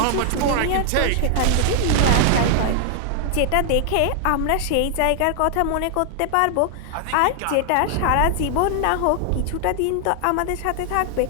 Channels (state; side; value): different; both; correlation 0.00